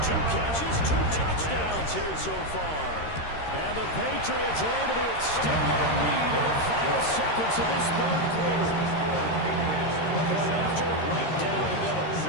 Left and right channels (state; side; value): late; right; 13 ms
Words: 2 catches, 2 touchdowns here so far. And the Patriots are able to extend their lead in the final seconds of this third quarter. Point after, right down the middle.